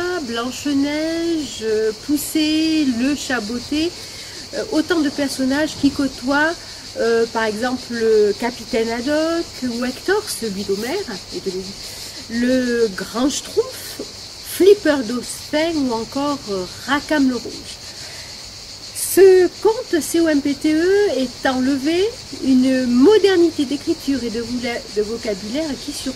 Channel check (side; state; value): both; identical; correlation 1.00